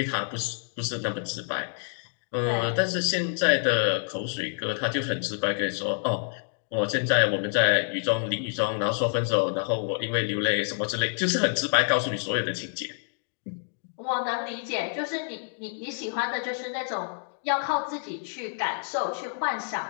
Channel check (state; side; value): silent; right; digital silence